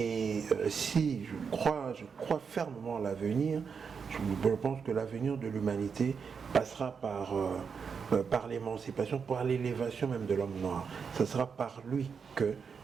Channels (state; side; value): quieter; left; 6.1 dB